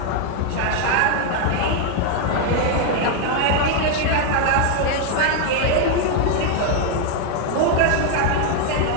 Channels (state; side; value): different; both; correlation 0.01